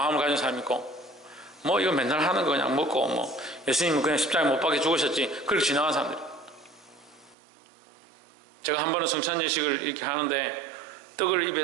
가진 사람이 있고 뭐 이거 맨날 하는 거 그냥 먹고 뭐 예수님은 그냥 십자가에 못 박혀 죽으셨지 그렇게 지나간 사람들. 제가 한 번은 성찬 예식을 이렇게 하는데 떡을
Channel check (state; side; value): drops out; left; at 7.4 s